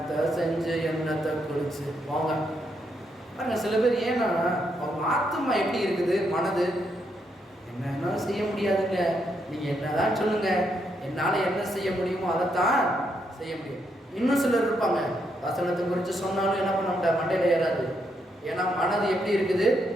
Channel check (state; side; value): normal; both; correlation 0.78